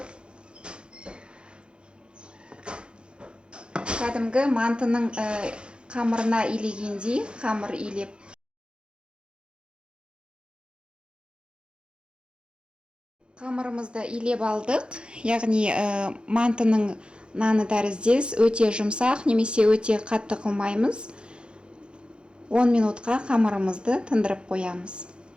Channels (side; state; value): left; late; 0.053 ms